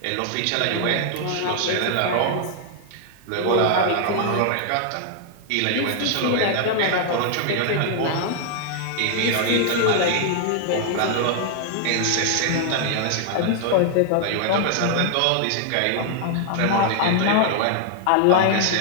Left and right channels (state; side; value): different; both; correlation 0.00